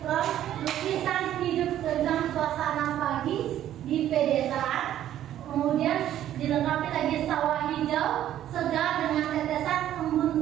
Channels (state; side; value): quieter; left; 11.8 dB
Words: prop lukisan hidup tentang suasana pagi di pedesaan. Kemudian dilengkapi lagi sawah hijau segar dengan tetesan